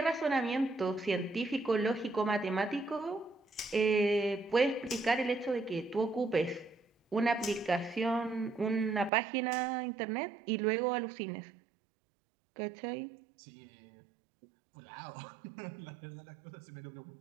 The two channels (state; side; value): drops out; left; at 9.1 s